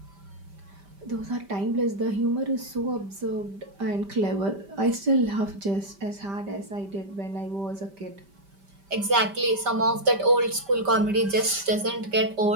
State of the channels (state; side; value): late; left; 5.1 ms